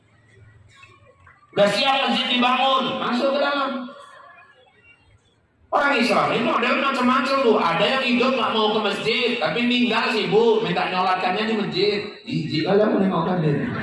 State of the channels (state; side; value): identical; both; correlation 1.00